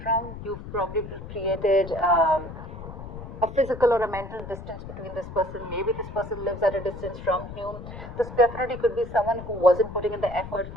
from. You've probably created a physical or a mental distance between this person. Maybe this person lives at a distance from you. This definitely could be someone who wasn't putting in the effort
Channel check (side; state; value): left; noise; rumble, 11 dB below the sound